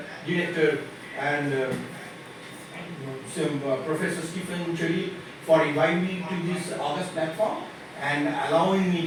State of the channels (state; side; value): identical; both; correlation 1.00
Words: Director and Professor Stephen CHERIYIL for inviting me to this August platform and allowing